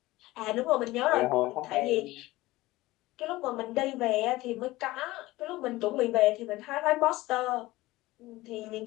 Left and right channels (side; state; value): right; quieter; 18.7 dB